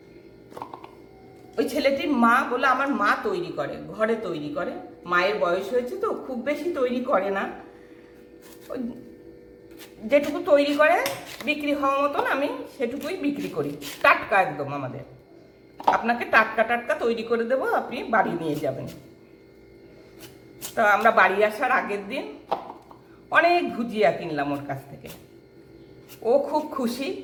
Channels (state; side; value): identical; both; correlation 1.00